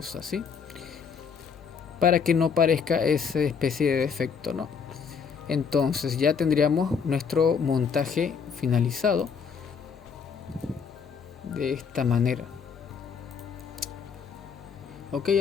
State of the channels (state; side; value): quieter; right; 6.2 dB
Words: así, para que no parezca esa especie de defecto, ¿no? Entonces ya tendríamos nuestro montaje finalizado de esta manera. Ok,